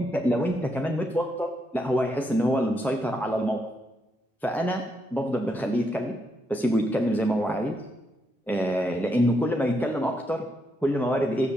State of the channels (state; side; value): normal; both; correlation 0.79